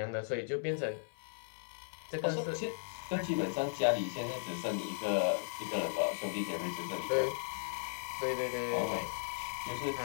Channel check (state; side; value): silent; right; 53 dB below the other